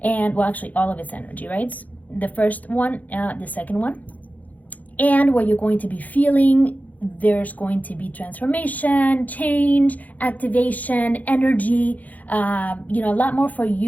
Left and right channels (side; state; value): right; late; 0.078 ms